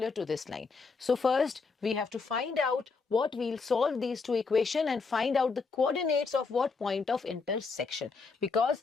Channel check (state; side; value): quieter; right; 4.6 dB